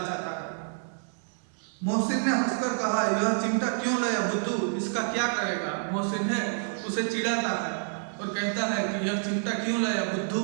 है। मोहसिन ने हंसकर कहा, यह चिमटा क्यों लाया बुद्धू, इसका क्या करेगा? मोहसिन है उसे चिढ़ाता है और कहता है कि यह चिमटा क्यों लाया बुद्धू,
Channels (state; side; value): silent; left; digital silence